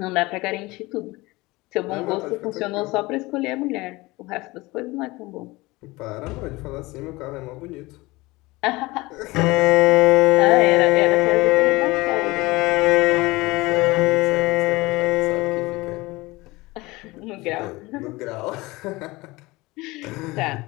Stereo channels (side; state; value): right; quieter; 21.7 dB